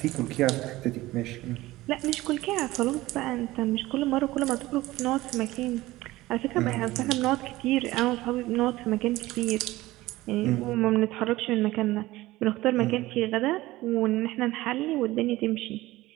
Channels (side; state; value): left; quieter; 17.9 dB